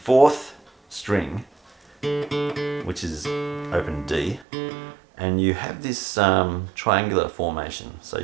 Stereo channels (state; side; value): drops out; left; at 4.5 s